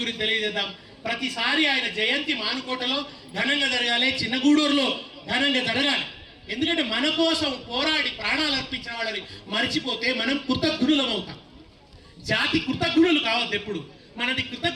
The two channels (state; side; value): identical; both; correlation 1.00